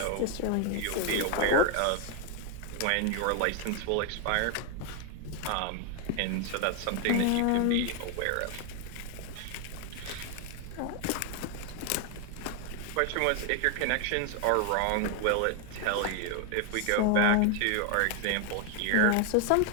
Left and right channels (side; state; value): both; different; correlation 0.00